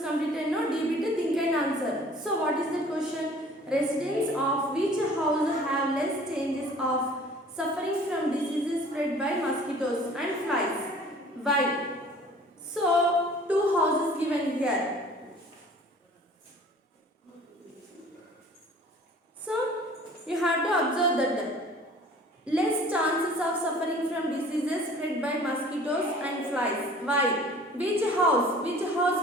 completed. No, D bit think and answer. So what is the question? Residents of which house have less chances of suffering from diseases spread by mosquitoes and flies? Why? So two houses given here. So you have to observe that less chances of suffering from diseases spread by mosquitoes and flies. Why? Which house? Which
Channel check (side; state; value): both; normal; correlation 0.49